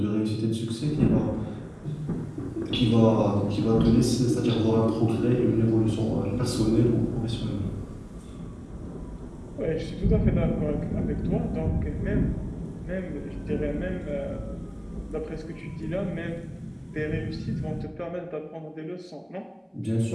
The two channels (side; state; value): both; identical; correlation 1.00